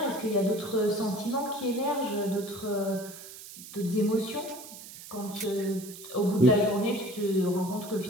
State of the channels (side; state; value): right; noise; hiss, 15 dB below the sound